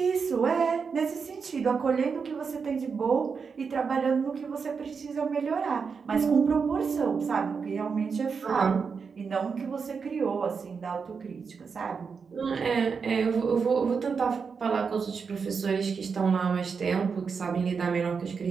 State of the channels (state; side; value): quieter; left; 5.6 dB